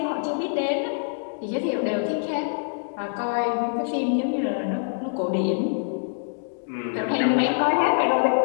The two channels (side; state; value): right; silent; digital silence